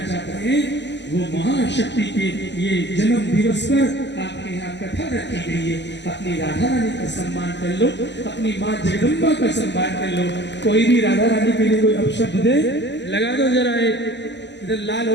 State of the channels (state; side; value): late; right; 0.51 ms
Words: चाहते हैं वो महाशक्ति के ये जन्म दिवस पर आपके यहाँ कथा रखी गई है। अपनी राधा रानी का सम्मान कर लो, अपनी माँ जगदम्बा का सम्मान कर लो। कोई भी राधा रानी के लिए कोई अपशब्द दे, लगा दो जरा, एक इधर लाल